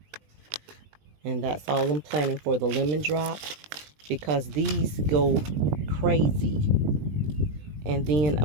And that's all I'm planning for the lemon drop, because these go crazy. And then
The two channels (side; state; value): left; late; 20 ms